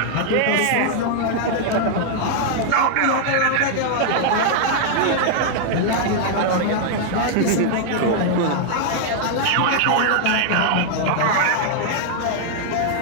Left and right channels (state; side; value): different; both; correlation -0.01